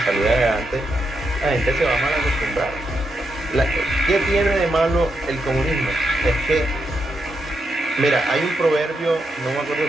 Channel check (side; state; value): both; normal; correlation 0.83